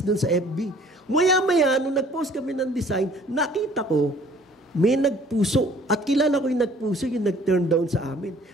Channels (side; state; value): both; normal; correlation 0.55